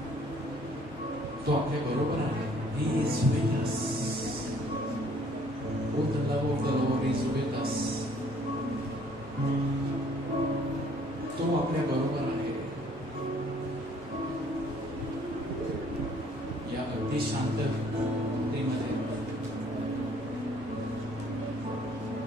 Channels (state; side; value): normal; both; correlation 0.60